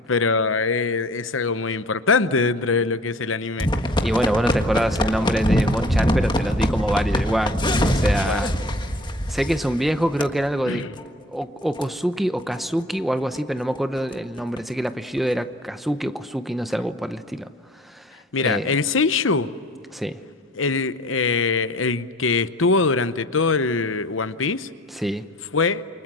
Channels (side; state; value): both; normal; correlation 0.48